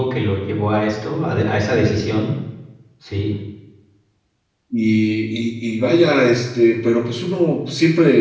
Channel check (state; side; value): identical; both; correlation 1.00